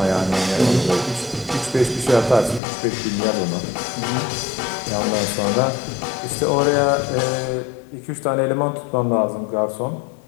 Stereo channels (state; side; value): drops out; right; at 2.6 s